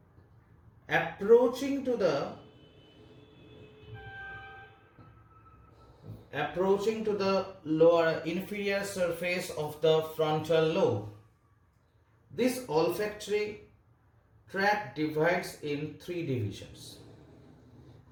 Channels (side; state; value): both; identical; correlation 1.00